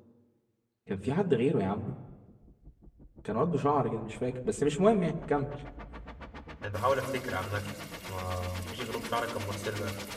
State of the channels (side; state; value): both; identical; correlation 1.00